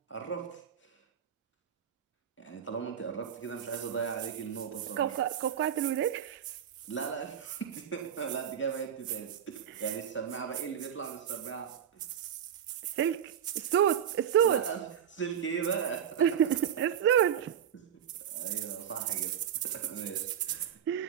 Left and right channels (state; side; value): quieter; left; 8.9 dB